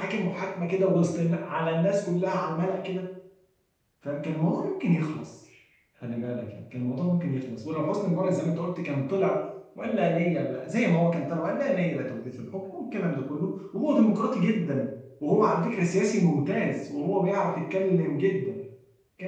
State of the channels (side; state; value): both; identical; correlation 1.00